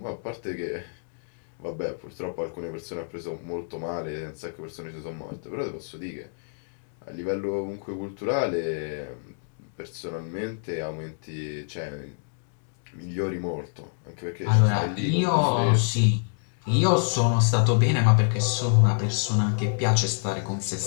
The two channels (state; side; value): silent; right; digital silence